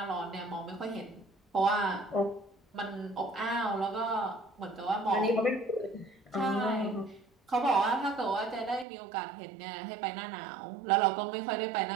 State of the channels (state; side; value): drops out; left; at 8.8 s